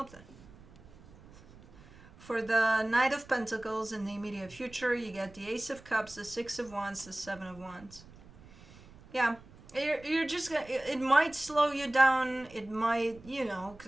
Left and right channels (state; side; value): noise; right; rumble, 22 dB below the sound